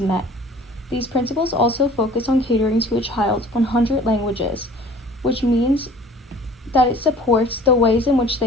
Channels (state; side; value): normal; both; correlation 0.49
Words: met. These principles also focus on catering to a child's 100 languages, which means that it supports the ways in which they